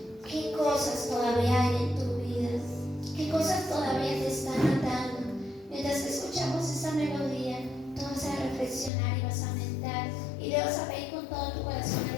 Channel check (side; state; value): right; drops out; at 8.9 s